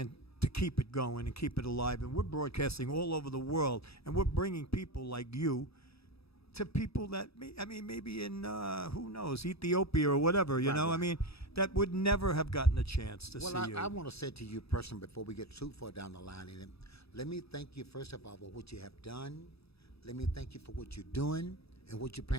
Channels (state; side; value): late; right; 0.78 ms